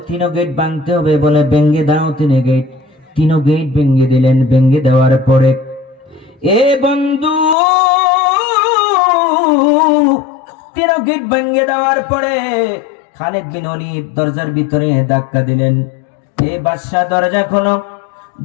3 গেট ভাঙতে হবে, বলে ভেঙে দাও 3 গেট। 3 গেট ভেঙে দিলেন। ভেঙে দেওয়ার পরে, এ বন্ধু, 3 গেট ভেঙে দেওয়ার পরে খালিদ বিন ওয়ালিদ দরজার ভিতরে ধাক্কা দিলেন, এ বাদশাহ দরজা খোলো।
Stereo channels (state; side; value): drops out; right; at 7.6 s